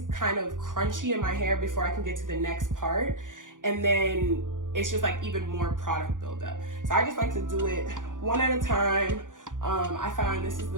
kind of crunchy in my hair before I can get to the next part. And then it's just like even more product buildup. So I just like to do it one at a time. I find this is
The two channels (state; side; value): late; left; 0.88 ms